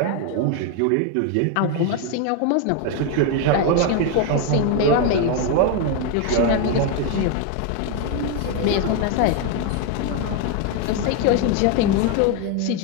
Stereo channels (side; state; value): both; different; correlation 0.01